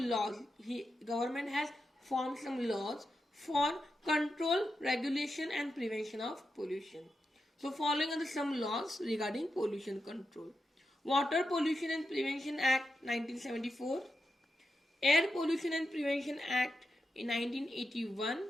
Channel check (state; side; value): normal; both; correlation 0.88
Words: laws. Government has formed some laws for control, regulation and prevention of pollution. So following are some laws regarding pollution control. Water Pollution and Prevention Act 1974, Air Pollution and Prevention Act in 1981,